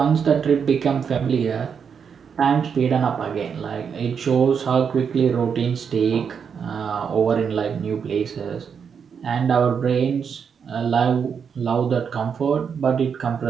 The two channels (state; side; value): quieter; left; 6.8 dB